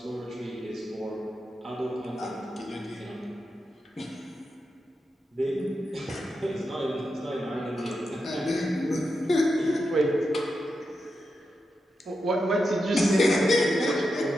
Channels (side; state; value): both; normal; correlation 0.87